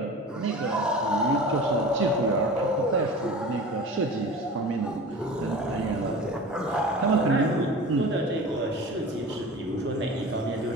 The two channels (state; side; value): normal; both; correlation 0.36